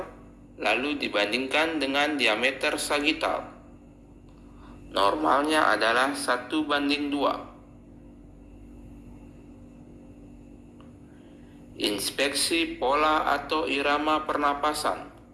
lalu dibandingkan dengan diameter sagital. Normalnya adalah 1:2. Inspeksi pola atau irama pernapasan.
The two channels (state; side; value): identical; both; correlation 1.00